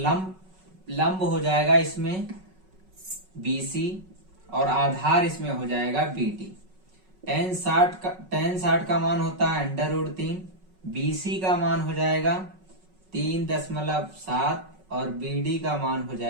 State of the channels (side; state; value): left; late; 5.4 ms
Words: लंब हो जाएगा इसमें BC और आधार इसमें हो जाएगा BD। tan 60 का मान होता है √3, BC का मान हो जाएगा 3.7 और BD का मान हो